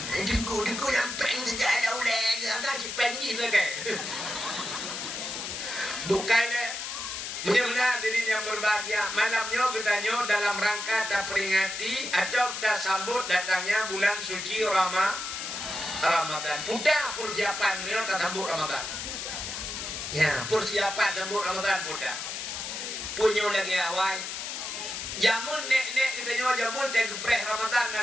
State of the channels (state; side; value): noise; left; hiss, 5 dB below the sound